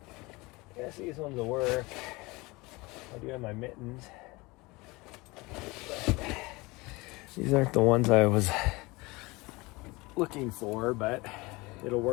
I guess these ones will work. I do have my mittens. But these aren't the ones I was looking for, but it'll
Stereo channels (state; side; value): quieter; right; 23.5 dB